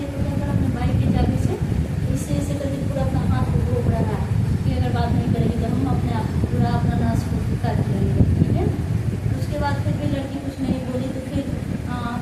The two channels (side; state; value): both; identical; correlation 1.00